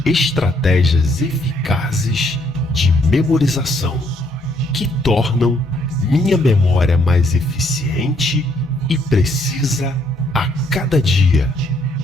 estratégias eficazes de memorização que tornam minha memória mais eficiente e precisa a cada dia.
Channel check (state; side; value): normal; both; correlation 0.69